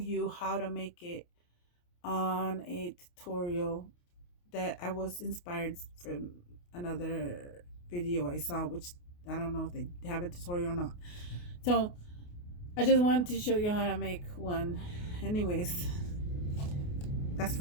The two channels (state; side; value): late; right; 28 ms